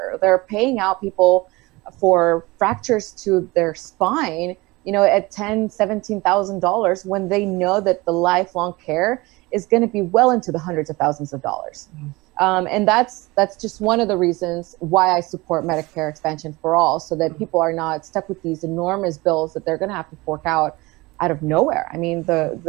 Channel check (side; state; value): left; quieter; 22.4 dB